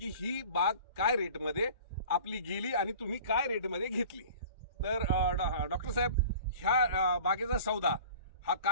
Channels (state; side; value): inverted; both; correlation -0.43